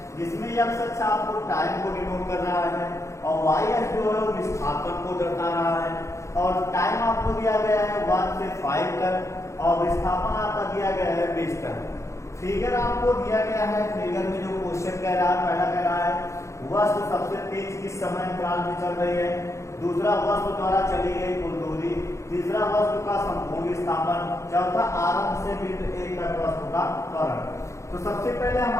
जिसमें x अक्ष आपको टाइम को डिनोट कर रहा है और y अक्ष जो है वो विस्थापन को दर्शा रहा है और टाइम आपको दिया गया है 1 से 5 तक और विस्थापन आपका दिया गया है 20 तक। फिगर आपको दिया गया है। फिगर में जो क्वेश्चन कह रहा है, पहला कह रहा है वस्तु सबसे तेज किस समय अंतराल में चल रही है, दूसरा वस्तु द्वारा चली गई कुल दूरी, तीसरा वस्तु का संपूर्ण विस्थापन, चौथा आरंभ से बिंदु A तक वस्तु का त्वरण। तो सबसे पहले हम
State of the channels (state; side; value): late; right; 0.14 ms